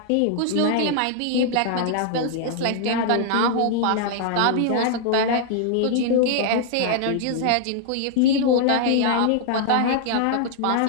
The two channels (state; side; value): different; both; correlation 0.00